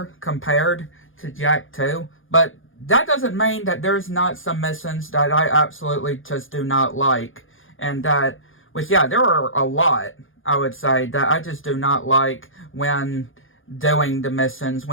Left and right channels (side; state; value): right; late; 0.58 ms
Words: compared to Jak 2, but that doesn't mean that there's not some missions that I absolutely just do not like, and that, which, yeah, there are a lot, I would say, that I just do not like when doing the missions,